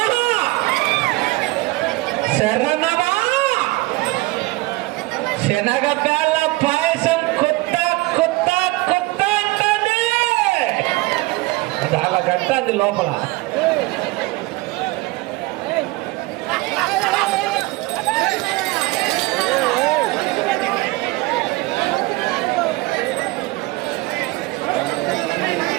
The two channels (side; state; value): left; quieter; 21.8 dB